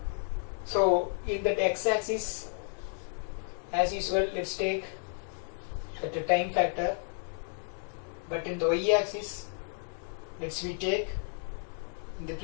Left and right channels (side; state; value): right; silent; 56 dB below the other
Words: so in that x-axis, as usual, let's take the time factor, but in the y-axis, we take, in the